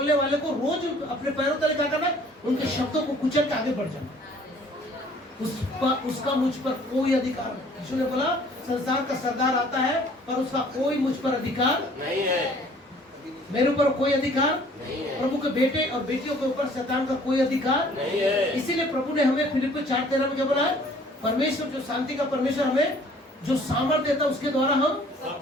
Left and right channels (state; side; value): normal; both; correlation 0.55